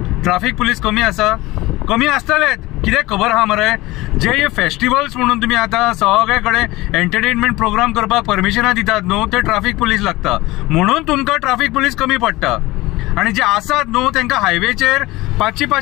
ट्राफिक पुलीस कमी आसा? कमी आसतलेच, कित्याक खबर आहा मरे, जे फेस्टिवल्स म्हणून तुम्ही आता सगळे कडेन एंटरटेनमेंट प्रोग्राम करपाक परमिशनां दितात न्हू, ते ट्राफिक पुलीस लागता, म्हणून तुमकां ट्राफिक पुलीस कमी पडटा। आणि जे आसात न्हू तांकां हायवेचेर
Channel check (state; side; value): quieter; right; 19.7 dB